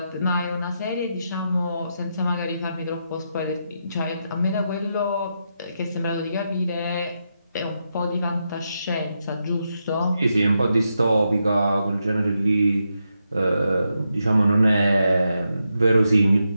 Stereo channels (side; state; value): both; inverted; correlation -0.85